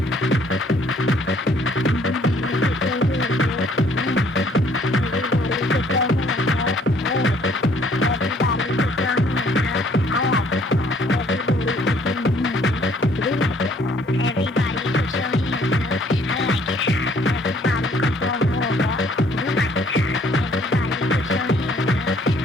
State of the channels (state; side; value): normal; both; correlation 0.61